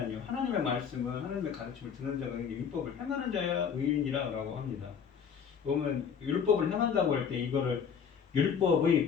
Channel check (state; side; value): quieter; right; 7.1 dB